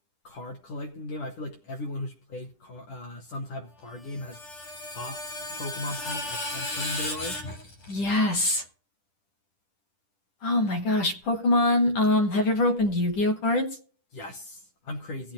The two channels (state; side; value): late; right; 10 ms